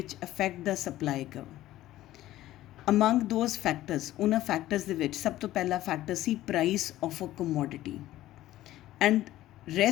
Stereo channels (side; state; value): right; quieter; 14.8 dB